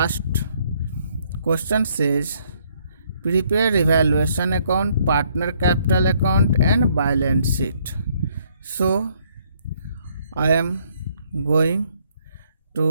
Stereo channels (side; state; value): both; inverted; correlation -0.68